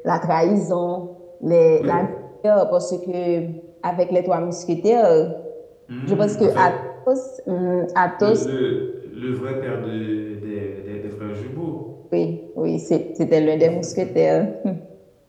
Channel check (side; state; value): both; identical; correlation 1.00